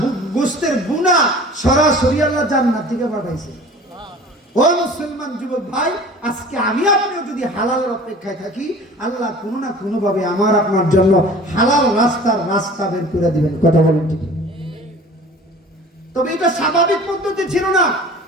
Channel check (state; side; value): normal; both; correlation 0.44